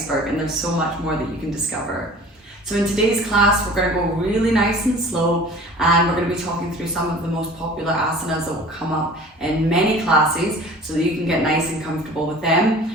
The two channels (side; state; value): both; normal; correlation 0.44